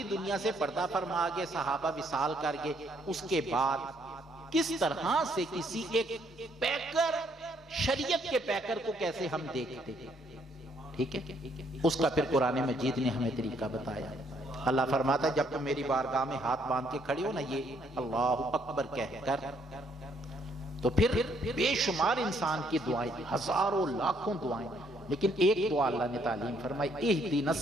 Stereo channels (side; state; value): both; normal; correlation 0.69